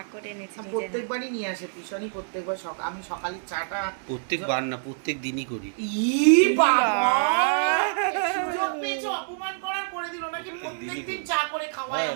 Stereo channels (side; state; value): left; silent; digital silence